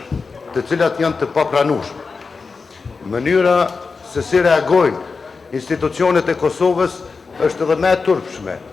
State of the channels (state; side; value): quieter; right; 4.6 dB